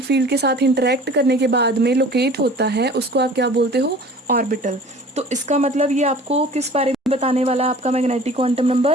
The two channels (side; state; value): both; normal; correlation 0.45